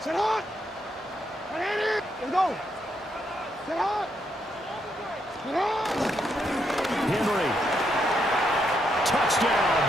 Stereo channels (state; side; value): normal; both; correlation 0.78